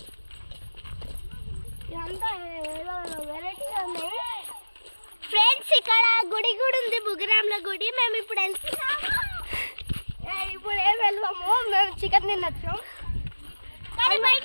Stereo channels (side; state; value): both; inverted; correlation -1.00